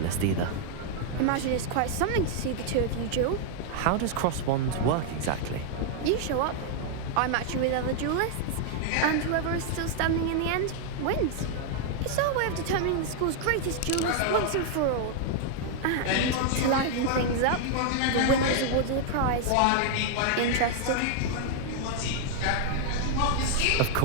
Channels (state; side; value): different; both; correlation 0.00